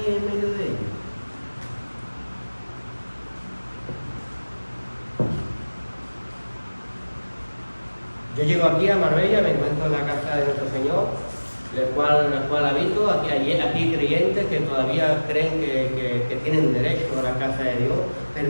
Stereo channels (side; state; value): both; inverted; correlation -1.00